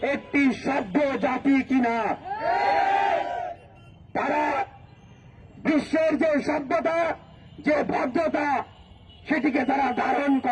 একটি সভ্য জাতি কিনা। তারা বিশ্বের যে সভ্যতা, যে ভদ্রতা, সেটিকে তারা ধারণ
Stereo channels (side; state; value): both; identical; correlation 1.00